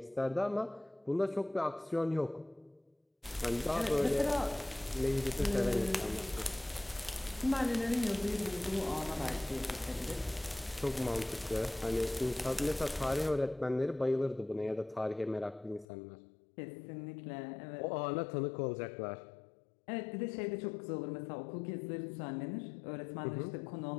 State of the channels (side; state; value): right; drops out; at 15.9 s